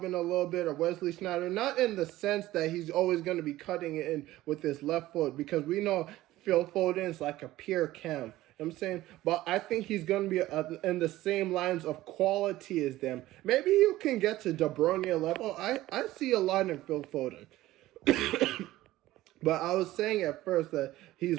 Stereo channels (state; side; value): quieter; left; 16.2 dB